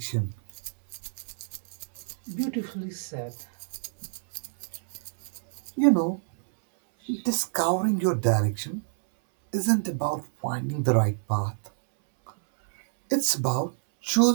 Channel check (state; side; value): silent; left; 60 dB below the other